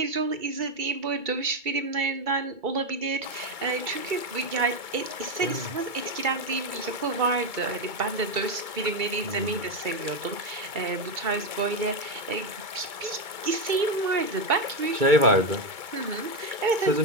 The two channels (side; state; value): left; late; 2.2 ms